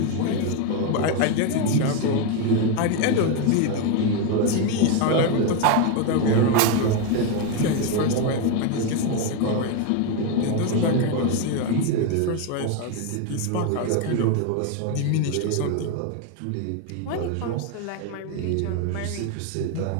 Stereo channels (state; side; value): different; both; correlation 0.02